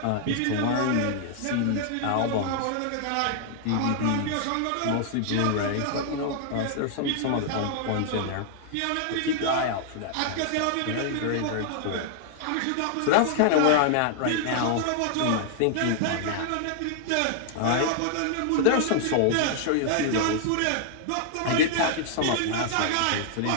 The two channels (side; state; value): both; different; correlation -0.01